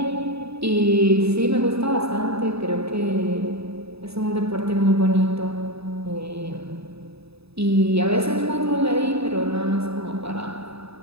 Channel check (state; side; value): late; left; 0.78 ms